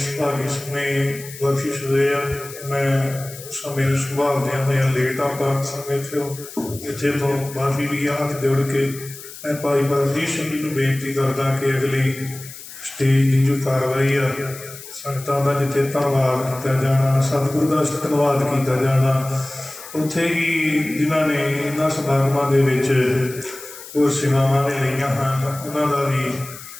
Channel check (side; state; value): left; noise; hiss, 15 dB below the sound